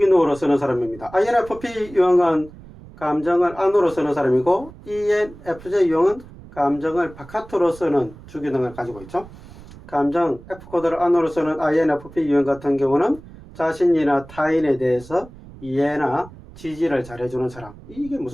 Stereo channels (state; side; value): noise; right; rumble, 19 dB below the sound